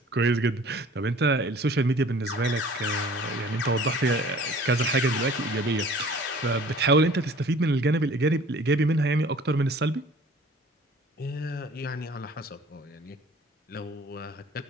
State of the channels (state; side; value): normal; both; correlation 0.49